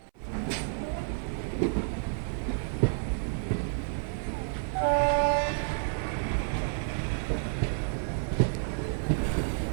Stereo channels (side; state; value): left; silent; 58 dB below the other